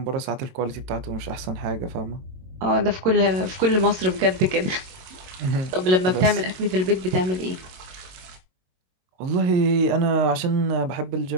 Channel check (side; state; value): left; late; 22 ms